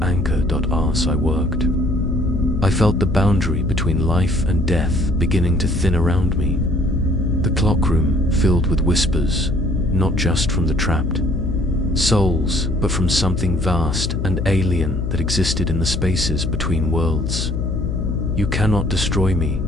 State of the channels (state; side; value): noise; left; hum, 1 dB below the sound